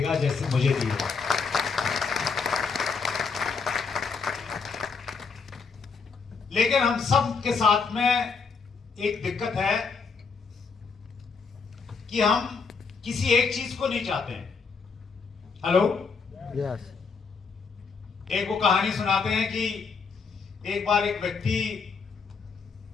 जैसे मुझे दी है। लेकिन हम सब के साथ में एक दिक्कत है कि हम किसी एक चीज को नहीं चाहते हैं। Hello, yes. एक वो कहानी सुनाते हैं कि एक बार एक व्यक्ति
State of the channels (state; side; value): quieter; right; 5.1 dB